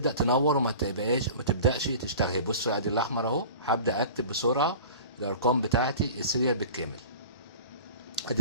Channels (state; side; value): inverted; both; correlation -0.39